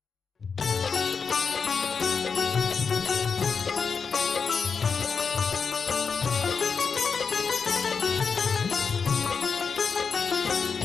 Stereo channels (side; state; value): right; quieter; 5.6 dB